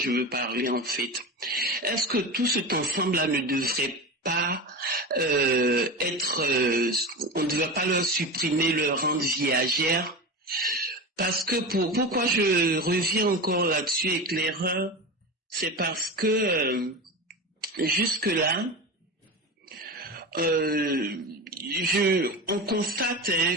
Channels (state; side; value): normal; both; correlation 0.25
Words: veux parler, en fait. Est-ce que tout cet ensemble-là ne devrait pas on ne devrait pas leur supprimer leur rente viagère, parce que pourquoi je reviens encore là-dessus, éclaireur, c'est parce que jusque là on constate